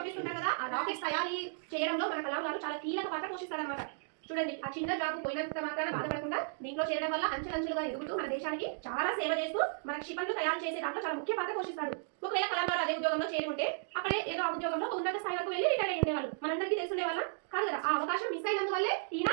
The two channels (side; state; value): left; silent; digital silence